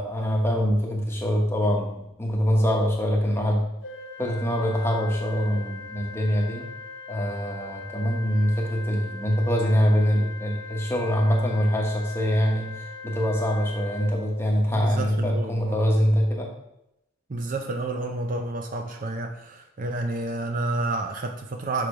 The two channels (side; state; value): both; normal; correlation 0.81